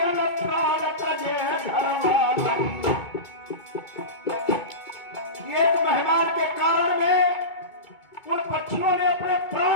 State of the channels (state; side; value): late; right; 2.3 ms